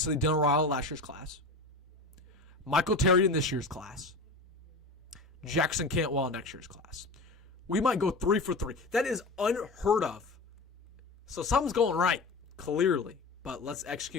Dylan Raiola last year's class. Michael Terry in this year's class. Jackson Cantwell in next year's class. We might go 3 for 3. That is unheard of. So something's going right, clearly. But let's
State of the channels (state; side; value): quieter; right; 3.2 dB